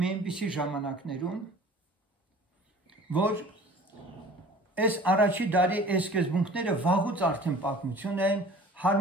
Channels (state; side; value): normal; both; correlation 0.46